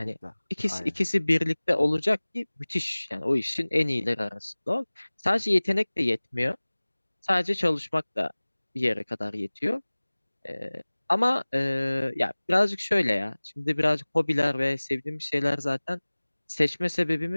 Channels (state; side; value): inverted; both; correlation -1.00